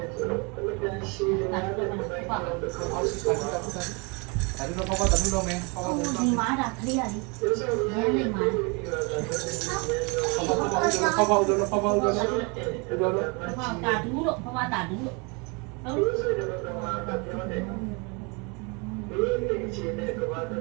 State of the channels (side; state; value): left; quieter; 31.1 dB